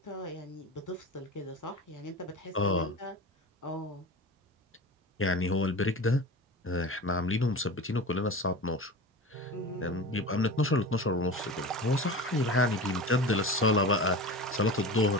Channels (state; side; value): normal; both; correlation 0.31